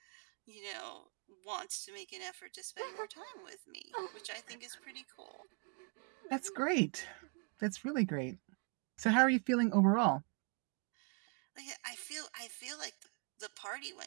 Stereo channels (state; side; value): quieter; left; 36.5 dB